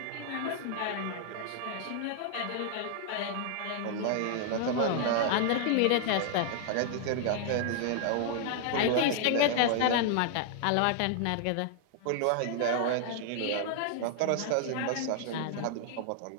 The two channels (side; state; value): both; different; correlation -0.01